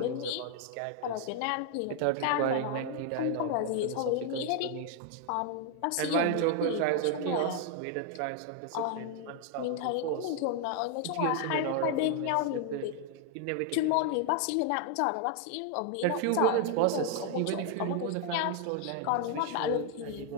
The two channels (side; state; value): both; different; correlation 0.00